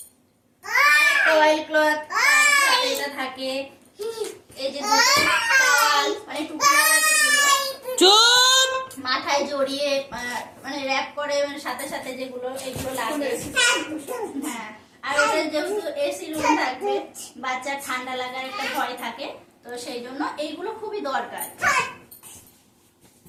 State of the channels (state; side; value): identical; both; correlation 1.00